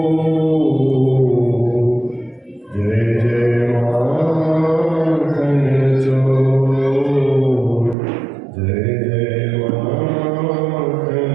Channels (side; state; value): left; drops out; at 8.0 s